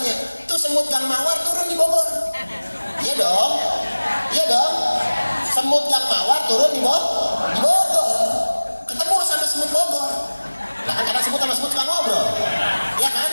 itu semut Gang Mawar turun di Bogor. Iya dong, semut Gang Mawar turun di Bogor, ketemu sama semut Bogor. Nah kan karena semut sama semut suka ngobrol, ya kan,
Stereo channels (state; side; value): inverted; both; correlation -1.00